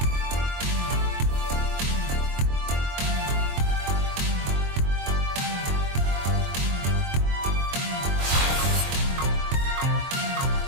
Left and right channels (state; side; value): late; left; 23 ms